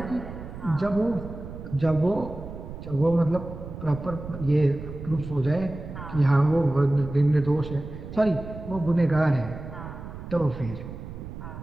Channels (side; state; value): right; noise; rumble, 11 dB below the sound